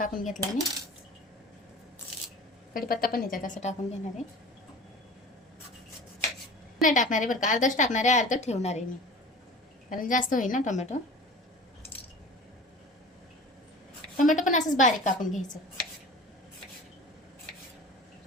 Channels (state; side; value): normal; both; correlation 0.39